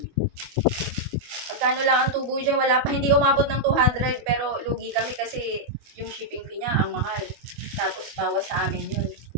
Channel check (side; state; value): left; late; 25 ms